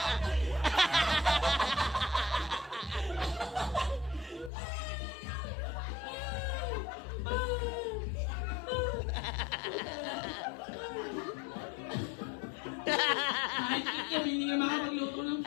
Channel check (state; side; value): drops out; right; at 4.5 s